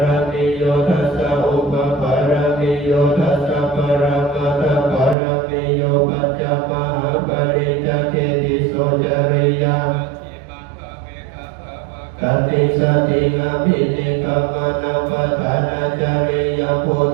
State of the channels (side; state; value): left; drops out; at 5.2 s